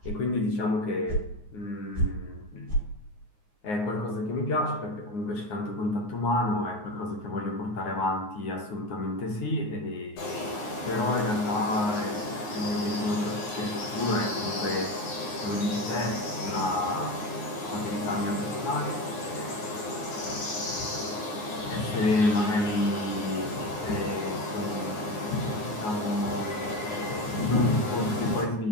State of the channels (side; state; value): right; late; 9.6 ms